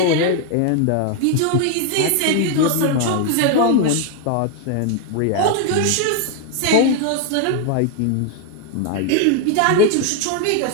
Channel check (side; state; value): both; different; correlation 0.01